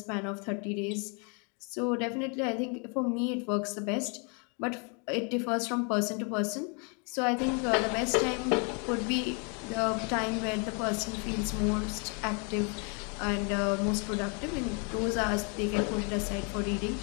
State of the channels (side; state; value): right; quieter; 36.1 dB